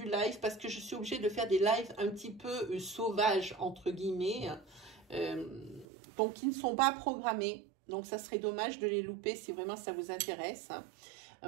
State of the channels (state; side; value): drops out; left; at 5.9 s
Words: live parce que je suis obligée de faire des lives un petit peu sauvages, entre guillemets. Donc, qui ne sont pas programmés. Donc, ça serait dommage de les louper si vraiment ça vous intéresse.